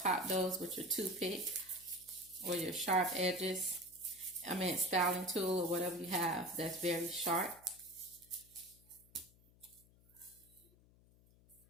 those with your toothpick or your sharp edges. I mean styling tool or whatever you have that's very sharp.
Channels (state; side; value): noise; left; hum, 27 dB below the sound